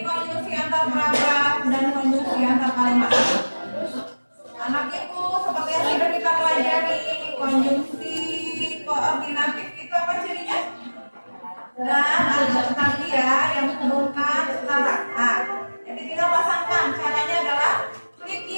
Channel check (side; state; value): both; inverted; correlation -1.00